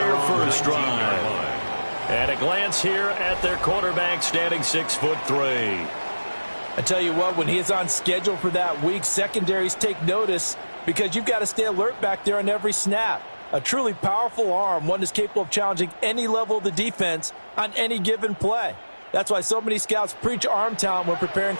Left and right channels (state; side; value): inverted; both; correlation -1.00